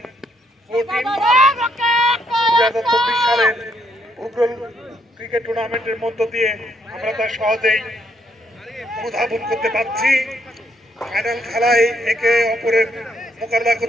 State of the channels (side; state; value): both; normal; correlation 0.72